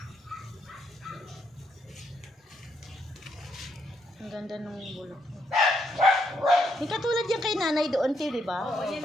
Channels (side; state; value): both; normal; correlation 0.76